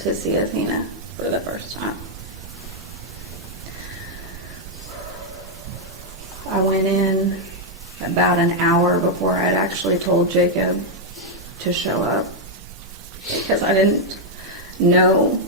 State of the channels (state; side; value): normal; both; correlation -0.02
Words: see Athena for the first time. I went in about an hour before I'd actually told Jacob to show up because I didn't know